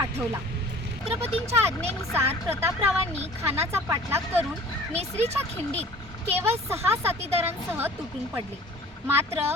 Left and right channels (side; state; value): both; normal; correlation 0.47